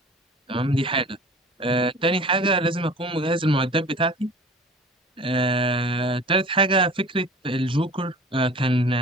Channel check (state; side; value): normal; both; correlation 0.42